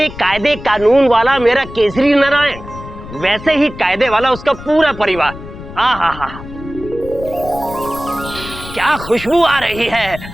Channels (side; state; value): left; noise; rumble, 14 dB below the sound